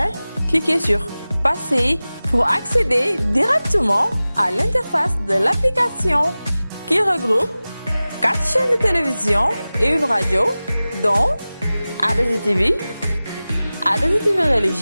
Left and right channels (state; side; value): inverted; both; correlation -0.97